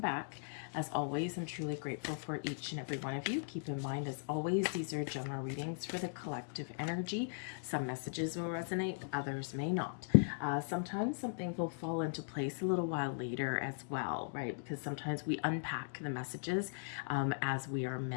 As always, I'm truly grateful for each and every one of you. Keep in mind, as always, these are general readings for the collective energy. Some messages will resonate, others may not. Sometimes something will fall into place a little while later as well, right? Because sometimes we unpack the messages as we are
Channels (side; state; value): right; silent; digital silence